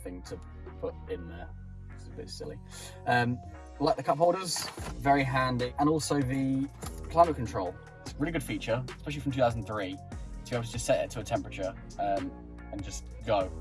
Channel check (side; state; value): both; identical; correlation 1.00